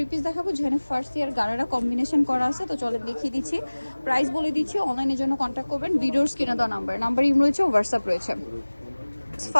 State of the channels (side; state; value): both; inverted; correlation -1.00